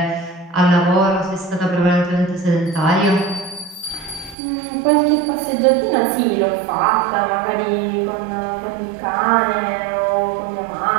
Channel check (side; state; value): left; drops out; at 4.4 s